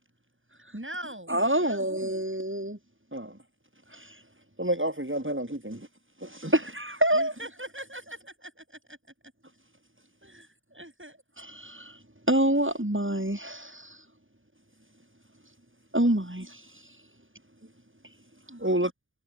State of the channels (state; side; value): late; left; 0.58 ms